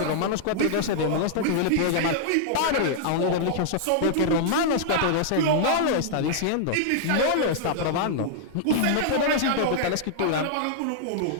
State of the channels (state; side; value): different; both; correlation -0.01